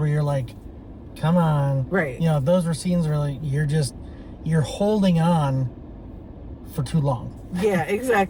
you're like, "Come on," Right. You know, those were scenes where like you're holding on for too long. Yeah,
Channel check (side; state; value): both; identical; correlation 1.00